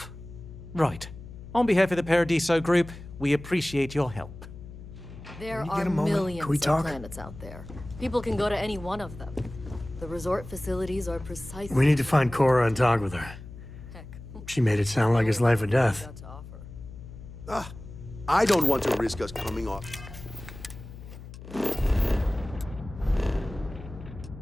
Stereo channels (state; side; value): noise; left; hum, 14 dB below the sound